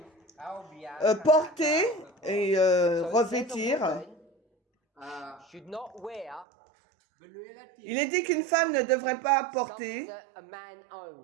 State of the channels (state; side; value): drops out; left; at 6.5 s